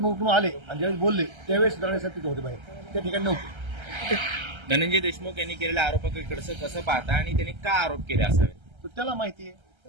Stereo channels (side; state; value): left; late; 1.3 ms